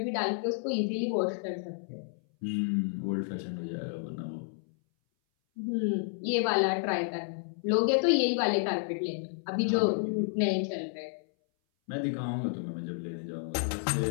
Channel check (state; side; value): silent; right; 57 dB below the other